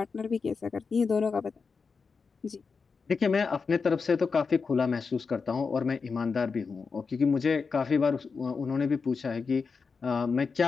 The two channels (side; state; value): right; quieter; 5.0 dB